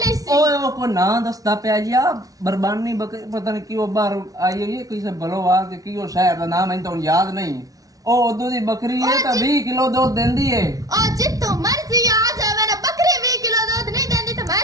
ਸੀ ਓਏ ਉਹ ਕੋ ਨਾਂ ਦੱਸਦਾ ਪਿਆ ਜੀ ਆ ਬਰਬਾਨੀ ਬੱਕਰੀ ਪਤਾ ਨਹੀਂ ਕਿਉਂ ਬਾਹਰ ਆਈ ਹੋਈ ਹੈ ਕਿਸੇ ਬਲੋਵਾਲ ਕੇ ਕਿਉਂ ਸ਼ਹਿਰ ਦਾ ਨਾਮ ਮੈਨੂੰ ਤਾਂ ਯਾਦ ਨਹੀਂ ਉਹ ਉਦੋਂ ਦੀ ਬੱਕਰੀ ਹੈ ਤਾਂ 20 ਕਿਲੋ ਦੁੱਧ ਦਿੰਦੀ ਹੈ ਉਹ ਜਿੱਤੋਂ ਮਰਜ਼ੀ ਆ ਜਾਵੇ ਨਾ ਬੱਕਰੀ 20 ਕਿਲੋ ਦੁੱਧ ਨਹੀਂ ਦਿੰਦੀ ਤਾਂ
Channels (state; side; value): late; left; 0.18 ms